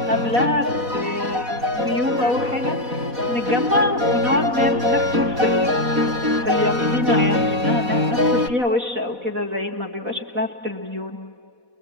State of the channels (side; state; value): left; late; 4.1 ms